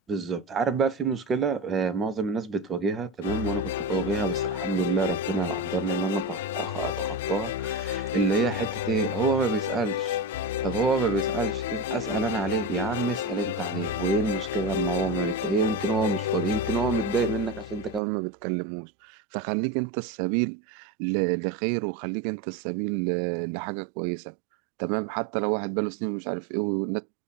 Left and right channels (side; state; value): left; drops out; at 18.0 s